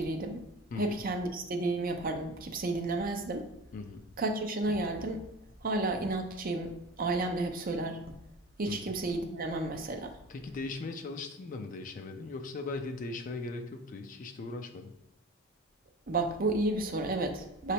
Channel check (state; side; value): normal; both; correlation 0.36